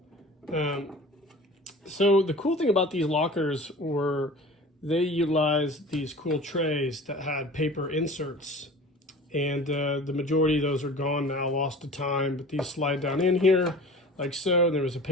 So the cool thing about these lockers were they utilized these cool trays that had paper inserts, and the majority of those are gone now, lost to time, but these slide down in here like so. And there was a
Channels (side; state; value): both; normal; correlation 0.40